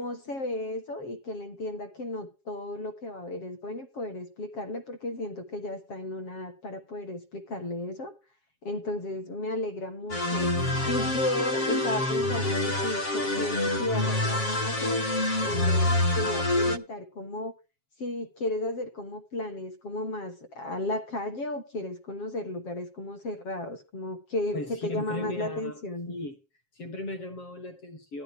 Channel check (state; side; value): late; right; 7.4 ms